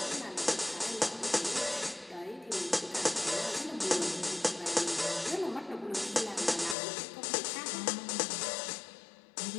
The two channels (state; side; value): drops out; right; at 6.8 s